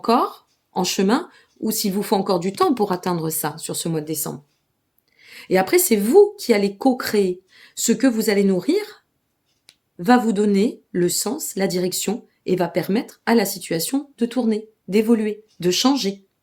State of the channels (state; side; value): identical; both; correlation 1.00